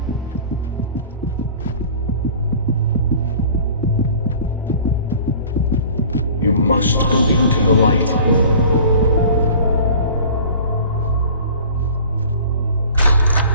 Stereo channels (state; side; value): inverted; both; correlation -0.44